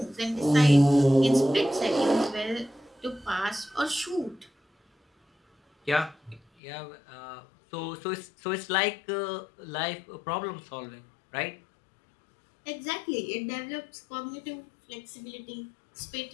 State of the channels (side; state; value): right; drops out; at 6.4 s